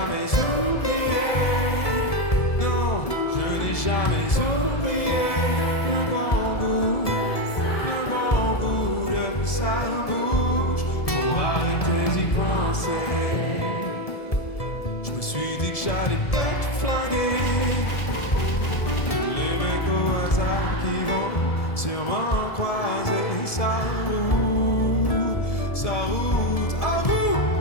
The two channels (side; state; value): right; late; 1.7 ms